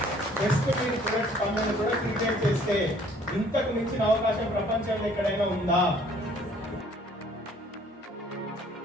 బెస్ట్ మీరు ప్రొడక్ట్స్ పనులను కూడా క్రియేట్ చేస్తే ఇంతకు మించిన అవకాశం ప్రపంచంలో ఎక్కడైనా ఉందా?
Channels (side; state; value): both; normal; correlation 0.58